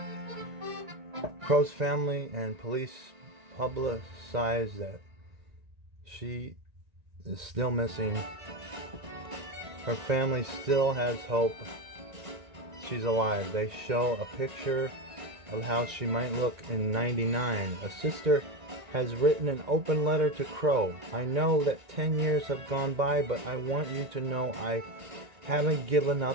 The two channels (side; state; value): left; late; 1.9 ms